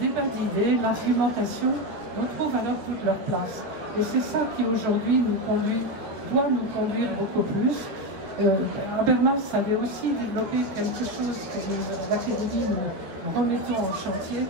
débat d'idées, l'argumentation, retrouvent alors toute leur place. Et c'est ça qui aujourd'hui nous conduit doit nous conduire beaucoup plus. Habermas avait aussi développé quelque chose que l'Académie nous remettons en chantier,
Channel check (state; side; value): late; left; 13 ms